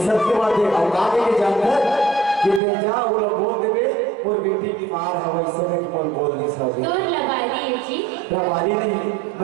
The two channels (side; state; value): left; drops out; at 2.6 s